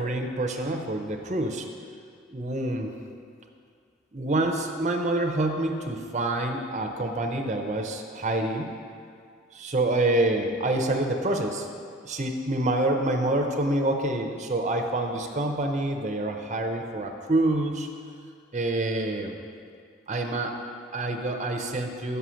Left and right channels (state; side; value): normal; both; correlation 0.43